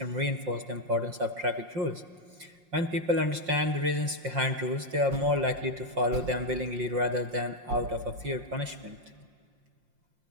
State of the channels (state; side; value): late; left; 5.6 ms